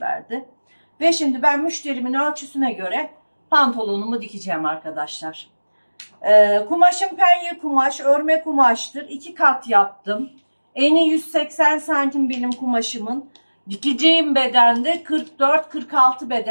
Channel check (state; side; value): inverted; both; correlation -1.00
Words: verdi. Ve şimdi ben müşterimin ölçüsüne göre pantolonumu dikeceğim arkadaşlar. Kumaşım penye kumaş, örme kumaştır. 2 kat yaptım. Eni 180 santim benim kumaşımın. Dikeceğim bedende 44-46